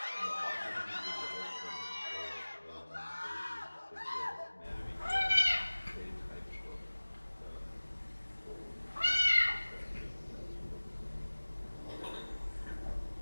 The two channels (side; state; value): both; inverted; correlation -1.00